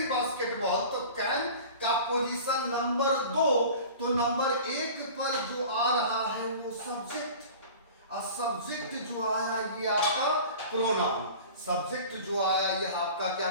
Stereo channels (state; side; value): inverted; both; correlation -0.40